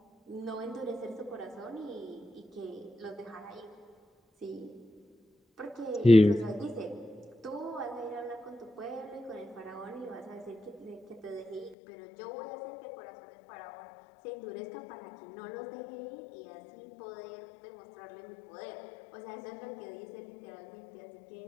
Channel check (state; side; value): drops out; right; at 11.8 s